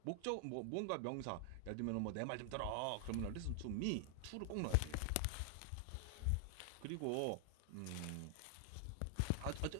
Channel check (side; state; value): both; different; correlation 0.00